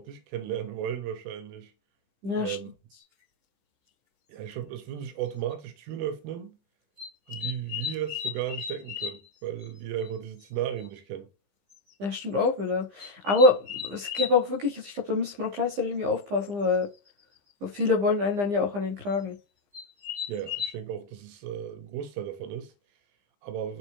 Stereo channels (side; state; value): left; late; 15 ms